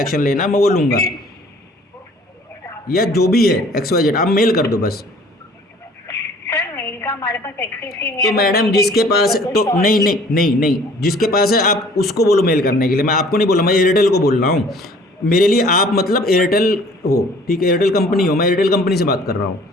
लेना मैं वो लूँगा, या जो भी है XYZ। आप मेल कर दो बस। हमारे पास एक्सेस ही नहीं तो है। मैडम जिसके पास, तो नहीं नहीं नहीं नहीं, जिसके पास है आप उसको बोलो मेल करने के लिए। मैं आपको नहीं बोला, मैं एयरटेल को बोल रहा हूँ। मेरे लिए आप मतलब एयरटेल हो, ठीक है, एयरटेल कंपनी हो, मैं एयरटेल कंपनी से बात कर रहा हूँ,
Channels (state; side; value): normal; both; correlation 0.53